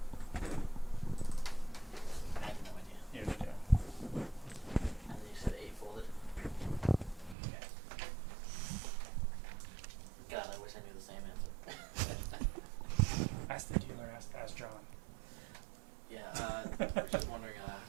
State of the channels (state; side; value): drops out; left; at 7.4 s